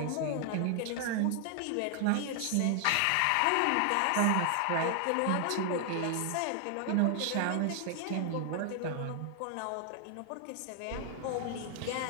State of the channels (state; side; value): different; both; correlation 0.00